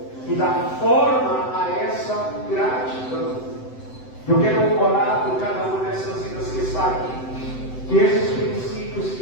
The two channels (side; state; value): right; late; 7.8 ms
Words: e dá forma a essa gratidão. Eu quero orar por cada uma dessas vidas que está aqui, que esses princípios,